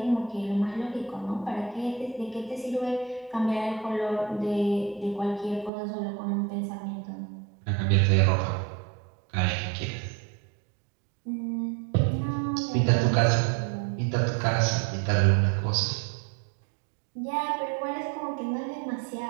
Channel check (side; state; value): left; drops out; at 5.7 s